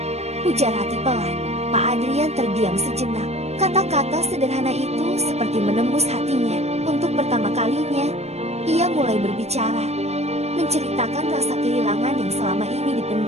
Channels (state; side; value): late; left; 0.31 ms